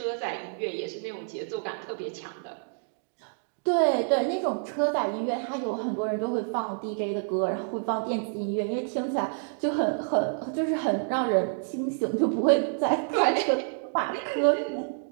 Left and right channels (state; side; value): silent; left; digital silence